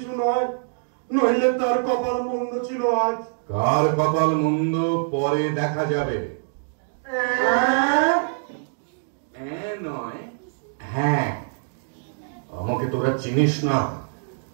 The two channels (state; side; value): silent; left; digital silence